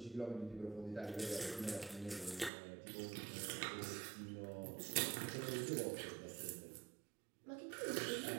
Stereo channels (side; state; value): left; drops out; at 2.5 s